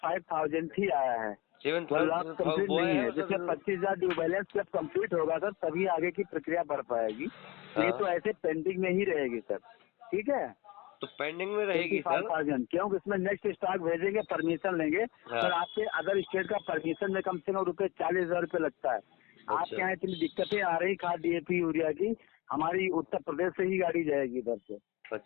ही आया है, 1 लाख कंप्लीट नहीं है। जैसे 25,000 ड्यू बैलेंस जब कंप्लीट होगा सर तभी आगे की प्रक्रिया बढ़ पाएगी। हाँ। ये तो ऐसे पेंडिंग में ही रहेगी सर, ठीक है। तो पेंडिंग में रहेगी सर, क्योंकि इसमें नेक्स्ट स्टॉक भेजेंगे, परमिशन लेंगे। हाँ। सर आपके अदर स्टेट का परमिशन में कम से कम रुपये 40,000 रुपये लगता है। अच्छा। आपके यहाँ इतनी दिक्कतें आ रही खाद DAP यूरिया की, हमारी उत्तर प्रदेश से ही गाड़ी जाएगी इधर से।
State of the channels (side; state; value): right; quieter; 22.2 dB